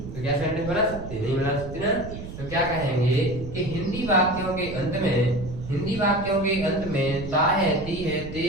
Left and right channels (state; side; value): noise; right; rumble, 10 dB below the sound